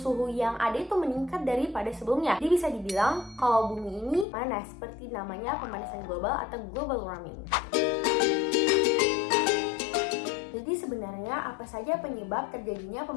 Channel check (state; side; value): drops out; right; at 4.2 s